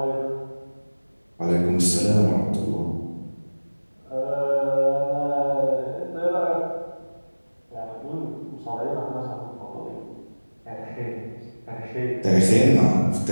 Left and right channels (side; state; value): both; inverted; correlation -1.00